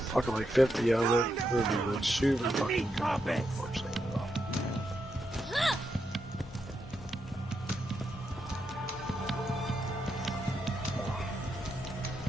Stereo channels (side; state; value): both; normal; correlation 0.83